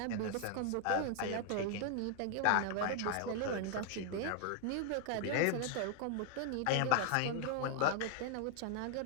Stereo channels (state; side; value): different; both; correlation 0.00